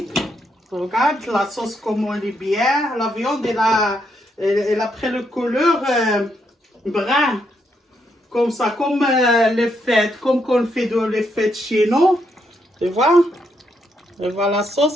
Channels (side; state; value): both; normal; correlation 0.77